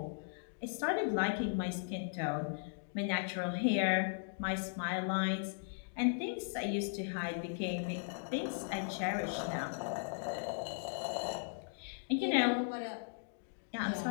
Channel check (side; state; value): right; silent; digital silence